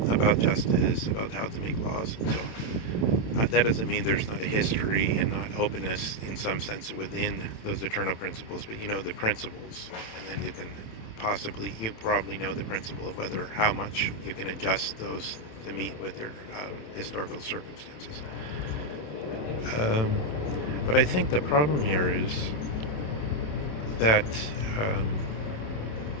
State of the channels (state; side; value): late; right; 27 ms